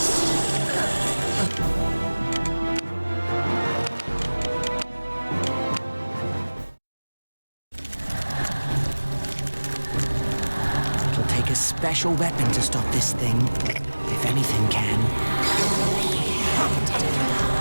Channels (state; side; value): inverted; both; correlation -1.00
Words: It'll take a special weapon to stop this thing. If anything can.